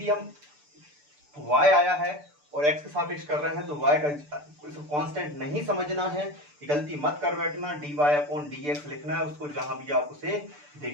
हम y आया है और x के सापेक्ष कर रहे हैं तो y का कांस्टेंट नहीं समझना है, ये गलती मत कर बैठना। dy/dx लिखना है उसको जहां भी आप उसे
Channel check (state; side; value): late; left; 6.8 ms